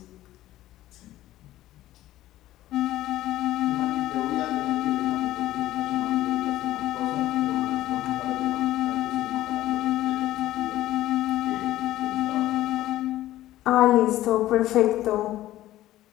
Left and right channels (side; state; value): right; quieter; 14.8 dB